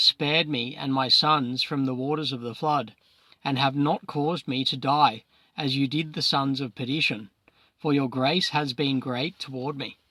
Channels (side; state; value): both; identical; correlation 1.00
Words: spared me and my sons from the waters of the flood, and have not caused me to die, as you did the sons of perdition, for your grace has been great toward me,